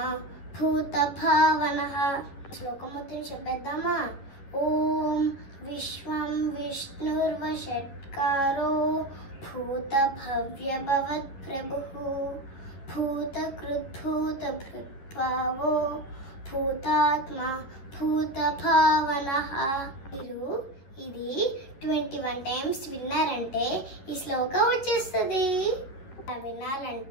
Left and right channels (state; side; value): late; right; 11 ms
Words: భూత భావనః. శ్లోకం మొత్తం చెప్పేద్దామా? ఓం విశ్వం విష్ణుర్వషట్కారో భూత భవ్య భవత్ ప్రభుః భూత కృత్ భూత భృత్ భావో భూతాత్మ భూత భావనః. మీరు ఇది 21 టైమ్స్ విన్నారంటే ఈ శ్లోకం వచ్చేస్తుంది.